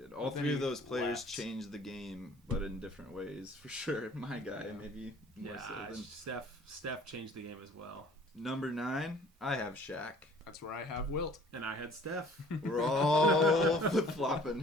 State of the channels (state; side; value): normal; both; correlation 0.52